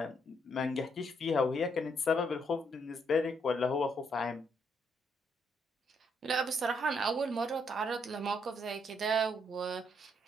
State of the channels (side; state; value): both; normal; correlation 0.73